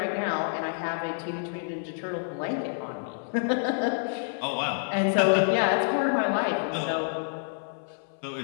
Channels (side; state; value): right; silent; 59 dB below the other